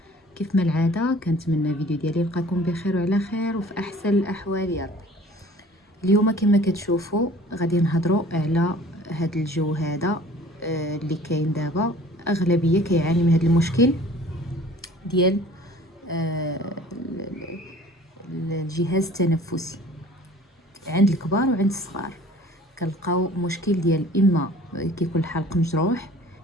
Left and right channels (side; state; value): both; normal; correlation 0.49